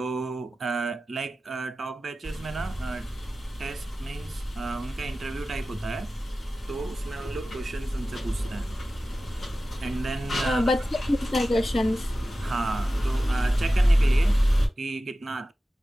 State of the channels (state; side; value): normal; both; correlation 0.95